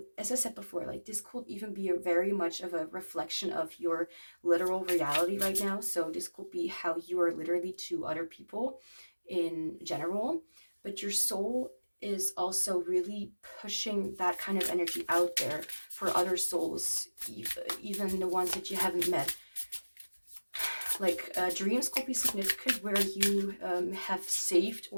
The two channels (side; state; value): both; inverted; correlation -1.00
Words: as I said before, like this could even be very much of a reflection of your literal reality right now. So this could be how you are literally to other people in general, but your soul is also really pushing that kind of energy out there for other souls, even the ones that you haven't met. Like dreams could be significant, where you have saved